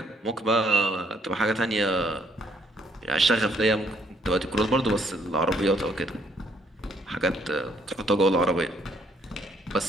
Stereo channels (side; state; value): both; normal; correlation 0.67